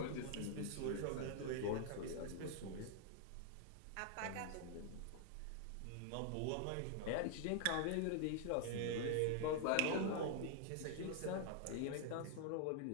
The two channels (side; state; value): both; different; correlation 0.00